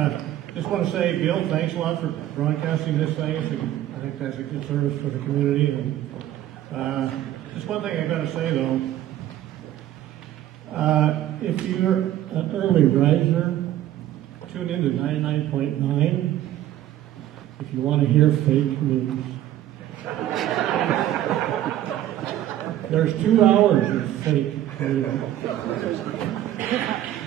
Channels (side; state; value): left; quieter; 12.9 dB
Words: just want to say, Bill, thanks a lot for broadcasting this thing. I think that's a good service for the community. And just one thing I got to say though, if you're an early riser, tune in to 99.9 if you want to hear fake news. There's 2 hours of fake news.